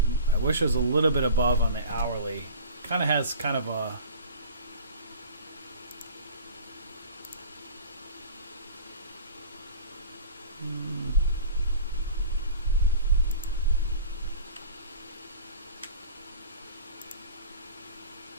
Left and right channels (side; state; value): both; inverted; correlation -0.41